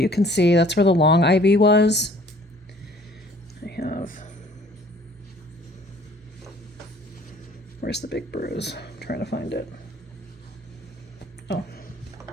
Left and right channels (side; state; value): both; normal; correlation 0.55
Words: can see that's where the long IV was. Where's the big bruise? I'm trying to find it. Oh.